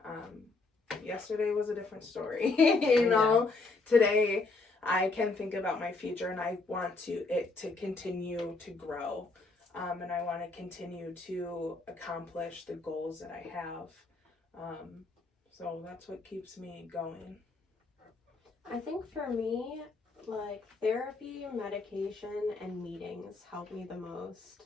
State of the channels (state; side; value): quieter; right; 3.7 dB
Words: Yesterday was a different story, you know. Today I can think about my future, and I want it to continue to grow, and I want to continue to accomplish the goals that I have. So that's what keeps me going. I think for me, like therapy, medication, and meetings help me the most,